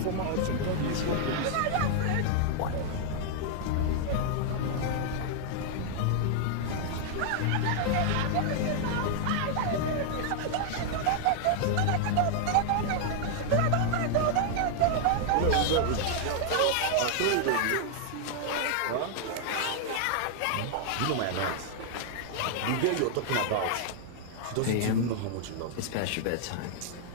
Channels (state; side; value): different; both; correlation 0.00